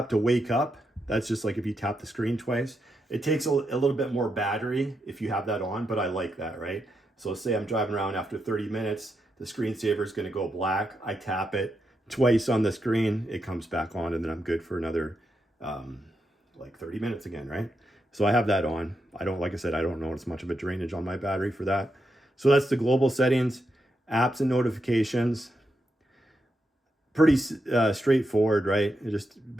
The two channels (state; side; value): normal; both; correlation 0.84